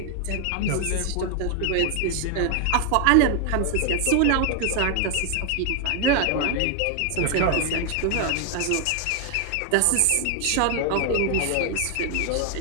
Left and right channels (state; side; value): different; both; correlation 0.00